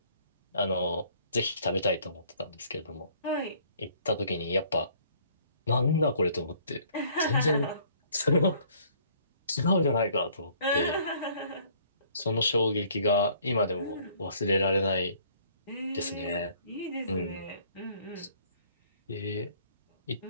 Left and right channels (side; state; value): both; inverted; correlation -0.59